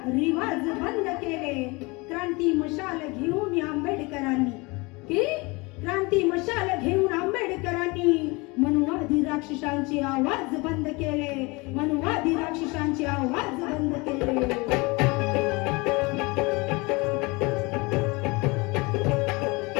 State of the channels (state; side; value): quieter; right; 25.9 dB